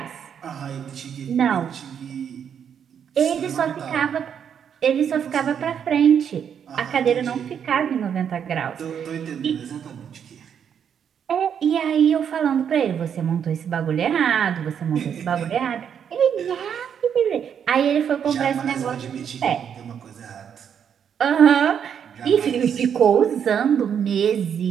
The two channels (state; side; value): quieter; left; 8.1 dB